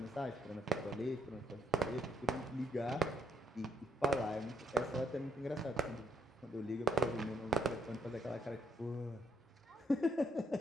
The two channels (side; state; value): both; normal; correlation 0.72